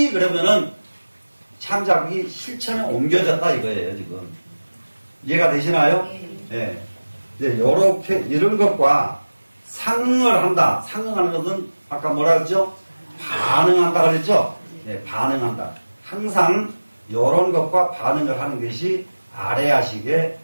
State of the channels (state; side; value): inverted; both; correlation -1.00